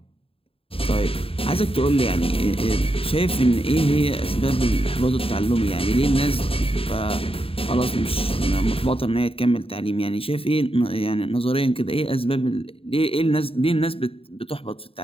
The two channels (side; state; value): right; late; 0.27 ms